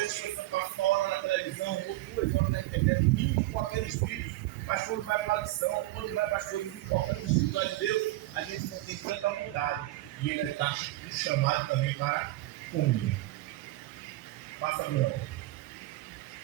você passa uma hora na televisão, ou 2 horas na internet, vindo com aqueles vídeos, mas quando vai para a lição, quando vai para as coisas importantes espirituais de Deus, a gente não tem tanta vontade. E ele está chamado também para comunhão. Passa, Bruno.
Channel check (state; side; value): quieter; left; 17.7 dB